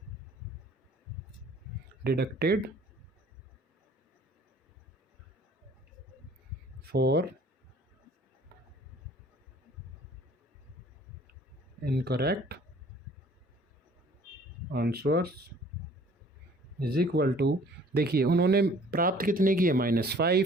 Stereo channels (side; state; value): both; normal; correlation 0.54